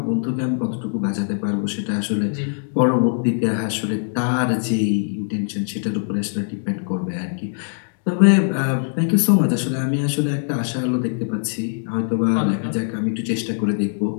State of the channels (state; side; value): silent; right; digital silence